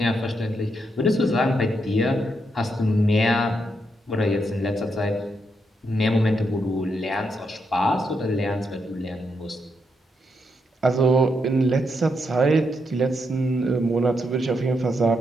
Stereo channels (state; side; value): normal; both; correlation 0.80